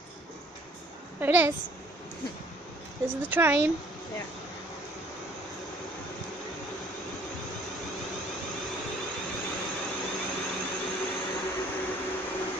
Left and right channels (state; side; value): normal; both; correlation 0.57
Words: There it is. This is the train. Yeah.